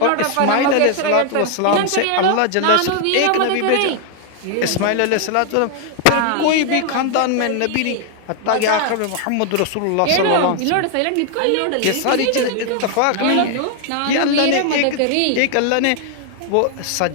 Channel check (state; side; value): different; both; correlation 0.00